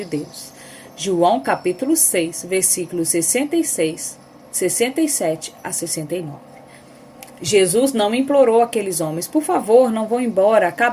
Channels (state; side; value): identical; both; correlation 1.00